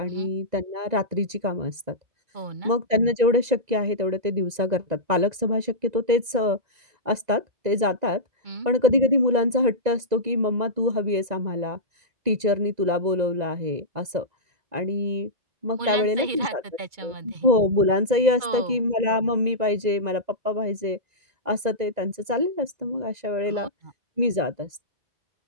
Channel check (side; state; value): left; late; 2.0 ms